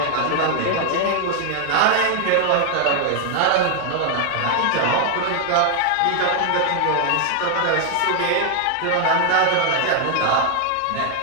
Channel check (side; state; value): both; different; correlation 0.00